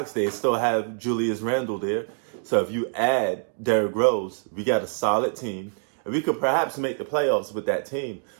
They still have Julius Randle there. So if you add Derrick Rose, we got a solid team, and we could perhaps make the playoffs with that team.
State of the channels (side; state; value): left; silent; digital silence